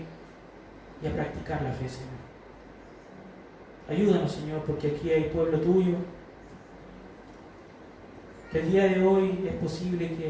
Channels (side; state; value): both; identical; correlation 1.00